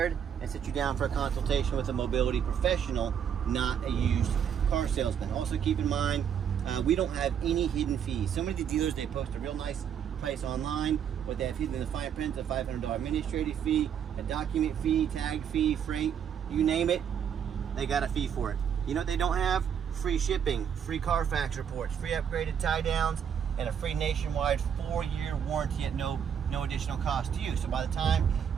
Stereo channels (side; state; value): left; quieter; 8.3 dB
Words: and sit you down for a consultation with a mobility professional, not a used car salesman. Also keep in mind, we don't have any hidden fees. Some of the dealers, they post a real nice price online, but they have hidden in the fine print a $500 administrative fee, a document fee, tag fee, freight, you name it, they got a fee for it. You know what they don't have? Free shipping, free Carfax reports, free upgraded tie downs, and a free nationwide 4-year warranty at no additional cost to you. So by the time